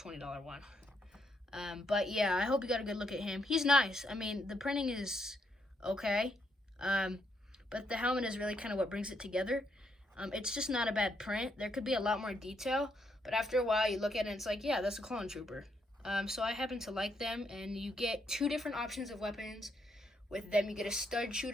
one. But yeah, I hope you got a good look at him. He's nice. I mean, the printing is okay, but the helmet is really kind of what brings it together. It's just not a bad print. There could be a lot more detail, but after a while you look at it and it's like, yeah, that's a clone trooper. So I happen to like them, and you get two different options of weapons with them. You get a stud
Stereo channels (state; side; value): normal; both; correlation 0.76